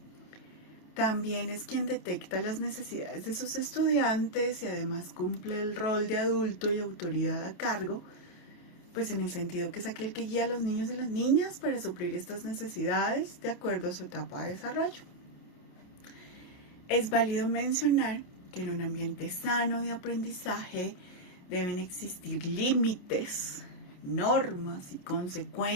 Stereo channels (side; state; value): right; late; 28 ms